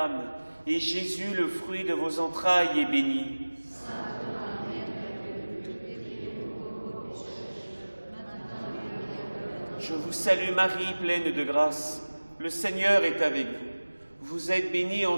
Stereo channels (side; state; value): both; inverted; correlation -1.00